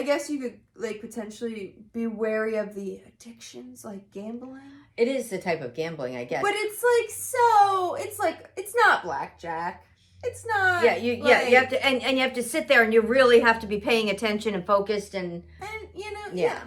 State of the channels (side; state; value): both; identical; correlation 1.00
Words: guess you could like potentially be wary of the addictions, like gambling. It is the type of gambling, I guess. But it's like it's not blackjack. It's not. Yeah, you have to, and you have to sit there, and you really have to be paying attention and focused, and yeah.